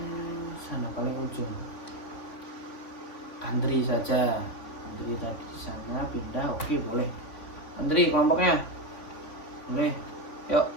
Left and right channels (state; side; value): late; right; 3.5 ms